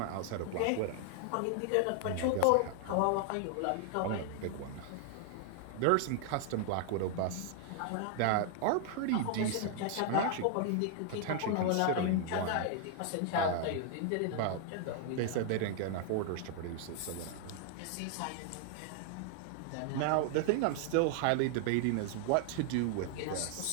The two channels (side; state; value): both; different; correlation 0.00